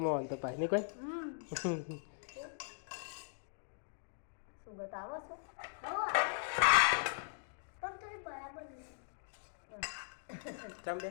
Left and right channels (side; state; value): right; silent; digital silence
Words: તો પાછી નહીં કોઈ. સુગત આવો છો પણ તો બરાબર ચમ બે